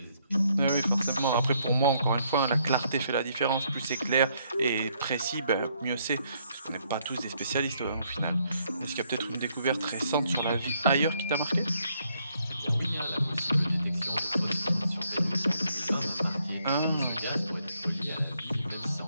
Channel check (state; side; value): inverted; both; correlation -0.72